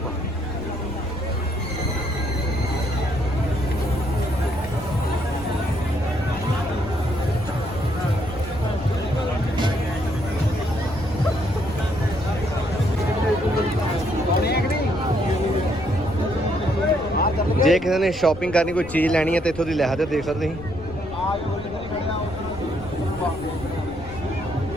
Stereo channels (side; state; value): left; noise; rumble, 14 dB below the sound